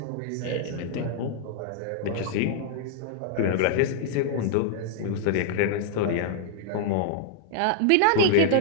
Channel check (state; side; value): different; both; correlation -0.01